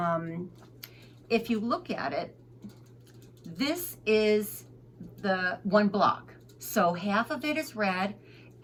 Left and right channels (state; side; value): identical; both; correlation 1.00